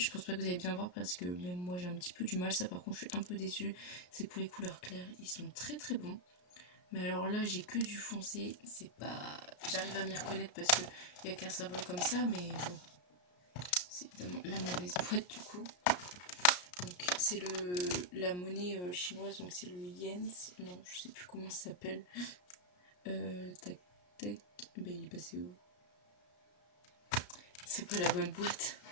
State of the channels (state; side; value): late; right; 33 ms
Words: pense pas que vous allez bien voir parce que même moi j'ai un petit peu du mal. Ça par contre je suis un peu déçue. C'est pour les couleurs claires. Ils sont très très bons. Mais alors là j'ai que du foncé. C'est pas... J'arrive à m'y reconnaître parce qu'il n'y a qu'un symbole comme ça. Mais bon. C'est évidemment la mauvaise boîte du coup. Donc c'est la monnaie chinoise. Donc c'est le yen. Non je sais plus comment ça s'appelle. Tac tac. Ben il est passé où? C'est pas la bonne boîte.